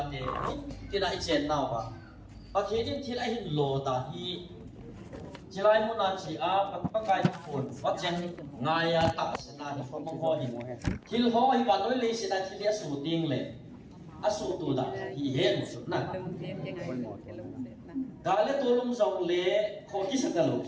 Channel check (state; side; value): identical; both; correlation 1.00